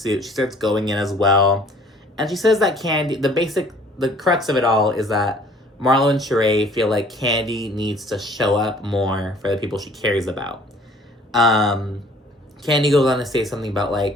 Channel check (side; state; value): both; normal; correlation 0.55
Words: she starts going in as well. And she says that Kandi, the crux of it all is that Marlo and Shereé feel like Kandi needs to show up more for the people she cares about. Kandi goes on to say something about,